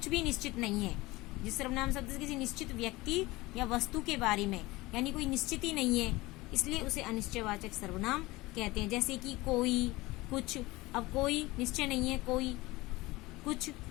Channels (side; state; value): right; quieter; 20.7 dB